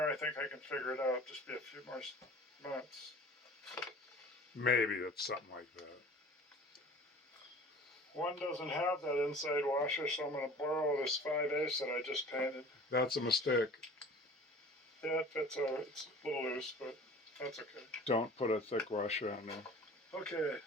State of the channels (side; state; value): both; normal; correlation 0.44